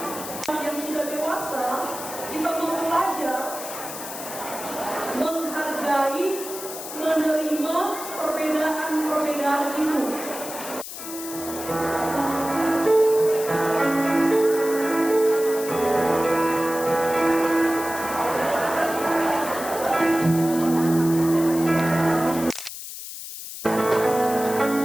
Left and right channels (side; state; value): left; noise; hiss, 10 dB below the sound